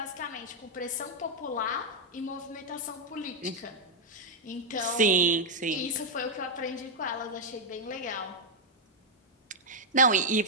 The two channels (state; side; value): normal; both; correlation -0.02